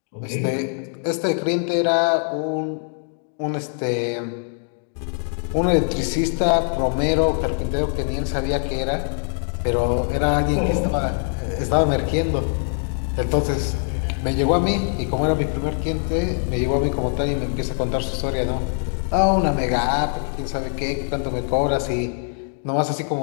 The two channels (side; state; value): right; silent; 59 dB below the other